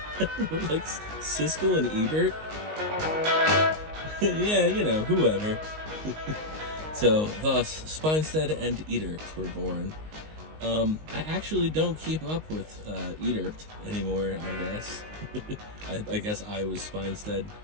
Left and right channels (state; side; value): late; left; 19 ms